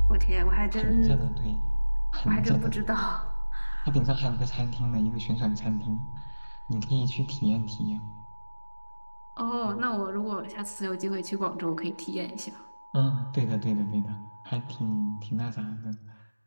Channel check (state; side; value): inverted; both; correlation -1.00